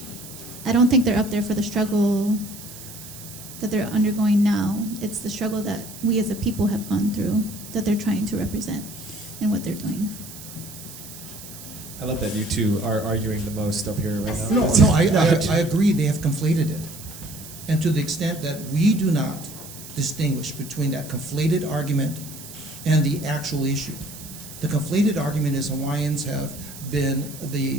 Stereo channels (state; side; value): noise; right; hiss, 14 dB below the sound